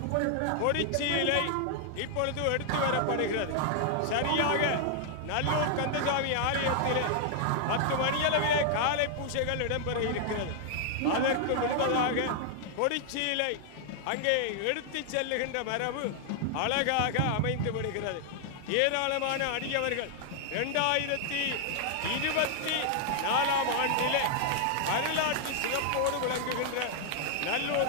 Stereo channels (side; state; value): both; different; correlation 0.00